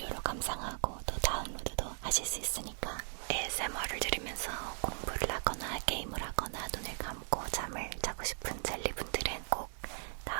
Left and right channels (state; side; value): silent; left; 53 dB below the other